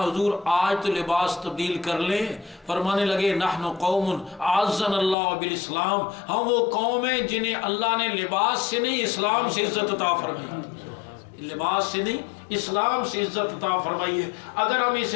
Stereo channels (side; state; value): right; drops out; at 5.2 s